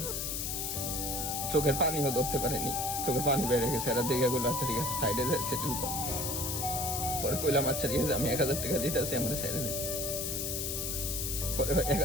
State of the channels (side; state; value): left; noise; hiss, 2 dB below the sound